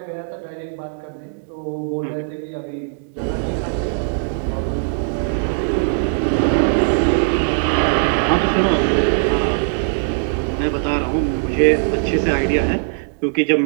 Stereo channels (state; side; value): silent; left; digital silence